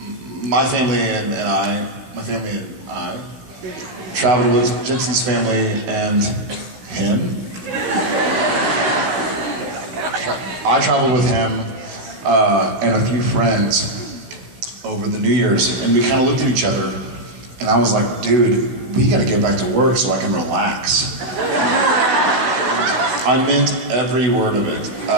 family and I traveled with Jensen's family and him. I traveled with him and a few friends over the New Year's, and we kind of looked at each other, and I was like, dude, we gotta get back to work so I can relax. I meant every word of it.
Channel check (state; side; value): late; left; 16 ms